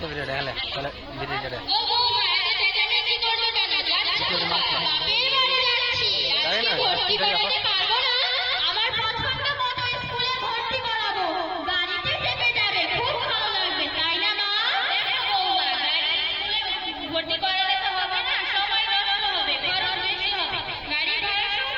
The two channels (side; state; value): both; identical; correlation 1.00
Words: ভিডিওটা হলে তাহলে ভিডিওটা ও বৌমা এত চেঁচামেচি করছো কেন? যাচ্ছি বাপের বাড়ি যাচ্ছি। আজকে ভর্তি করাতে পারবো না। আমার পছন্দ মতো স্কুলে ভর্তি করাবো। গাড়িতে চেপে যাবে, খুব ভালো লাগবে, তাই না মা? দেখো বৌমা, স্কুলে ভর্তি করালে তো হবে না, সময় নষ্ট হবে, খরচ বেশি হবে। গাড়ি ভাড়ার সঙ্গে